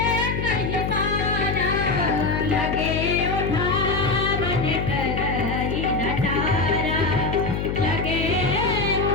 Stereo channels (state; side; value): noise; left; hum, 2 dB below the sound